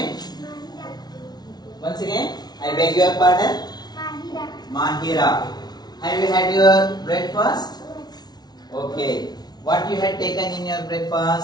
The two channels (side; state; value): right; late; 0.19 ms